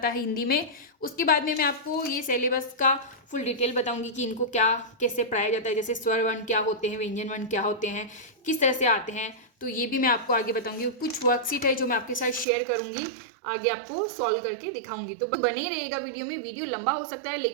है हिंदी में। उसके बाद में मैं आपको ये सिलेबस का फुल डिटेल बताऊंगी कि इनको क्या कैसे पढ़ाया जाता है, जैसे स्वर वर्ण क्या होते हैं, व्यंजन वर्ण क्या होते हैं, किस तरह से आते हैं। तो ये भी मैं आपको आगे बताऊंगी। कुछ वर्कशीट है जो मैं आपके साथ शेयर करूंगी, आगे आपको सॉल्व करके दिखाऊंगी। तो बने रहेगा वीडियो में। वीडियो लंबा हो सकता है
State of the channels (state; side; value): drops out; left; at 12.5 s